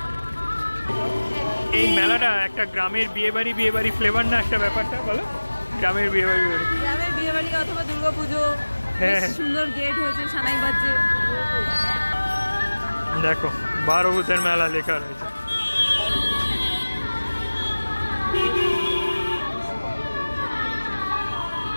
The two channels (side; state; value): both; inverted; correlation -1.00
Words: এই মেলাটা একটা গ্রামের বিয়েবাড়ি ফ্লেভার না একটা ব্যাপারটা, বলো? গ্রামের বিয়েবাড়ি অথবা দুর্গাপুজো, সুন্দর গেট হয়েছে, সানাই বাজছে। দেখো বারোভূতের মেলা লেখা রয়েছে।